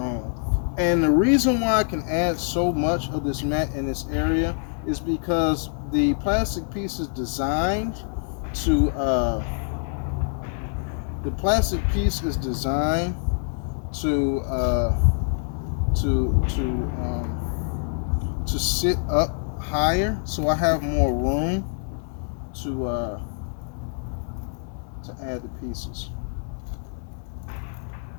And the reason why I can add so much of this mat in this area is because the plastic piece is designed to to to sit up higher, so I have more room to add the pieces.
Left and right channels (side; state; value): right; silent; 62 dB below the other